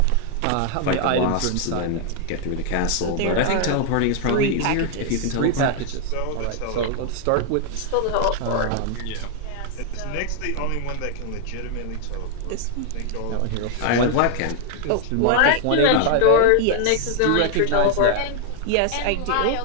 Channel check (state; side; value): different; both; correlation 0.00